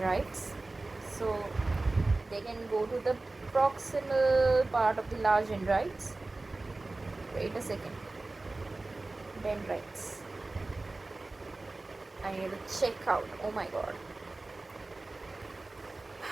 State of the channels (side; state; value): left; quieter; 3.2 dB